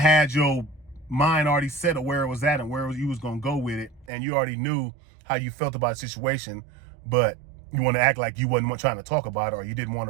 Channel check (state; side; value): drops out; left; at 4.1 s